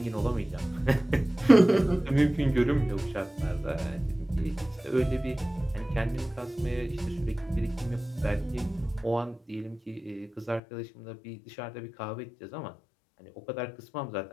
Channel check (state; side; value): drops out; right; at 10.6 s